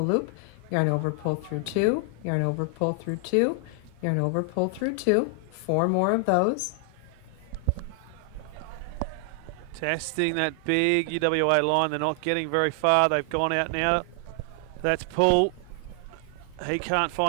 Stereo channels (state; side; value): different; both; correlation 0.00